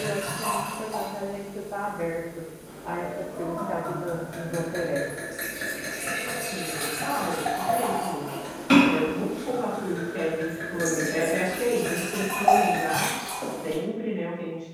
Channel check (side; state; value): both; identical; correlation 1.00